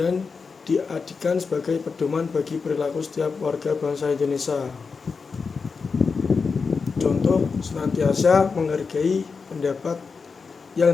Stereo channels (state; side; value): quieter; right; 5.0 dB